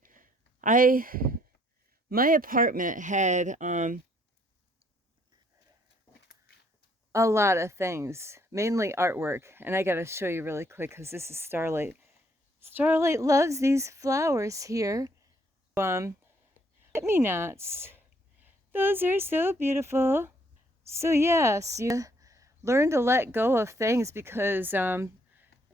My apartment had a lot of things, mainly artwork. And I got to show you really quick because this is Starlight. Starlight loves these flowers here. Forget-me-nots. Those are so beautiful. So yes, you learn to let go of things, because in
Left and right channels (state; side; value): normal; both; correlation 0.67